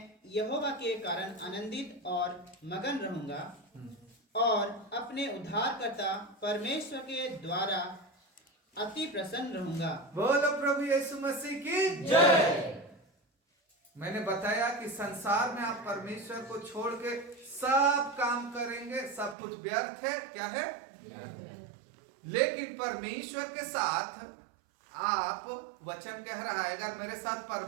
यहोवा के कारण आनंदित और मगन रहूंगा और अपने उद्धारकर्ता परमेश्वर के द्वारा अति प्रसन्न रहूंगा। बोलो प्रभु यीशु मसीह की जय। मैंने बताया कि संसार में आप परमेश्वर को छोड़ के सब काम करेंगे, सब कुछ व्यर्थ है। क्या है? लेकिन परमेश्वर के साथ आप, वचन कह रहा है अगर मेरे साथ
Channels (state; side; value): drops out; left; at 19.4 s